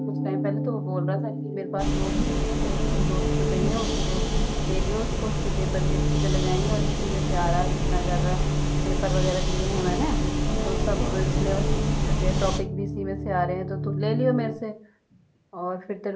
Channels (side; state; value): both; identical; correlation 1.00